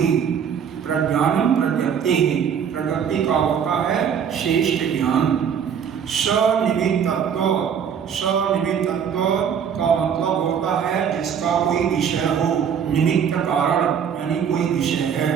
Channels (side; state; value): left; quieter; 7.7 dB